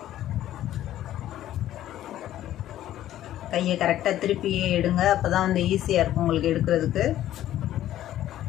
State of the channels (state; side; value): quieter; right; 12.9 dB